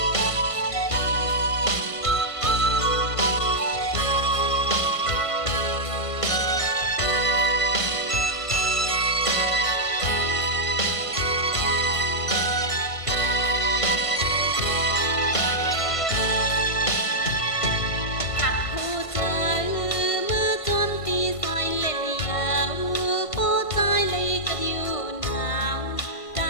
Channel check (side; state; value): right; late; 1.5 ms